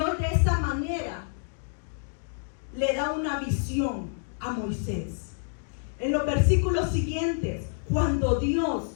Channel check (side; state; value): right; silent; digital silence